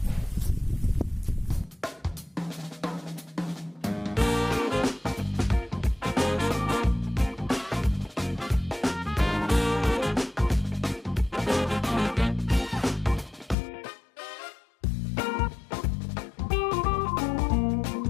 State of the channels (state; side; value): drops out; right; at 13.6 s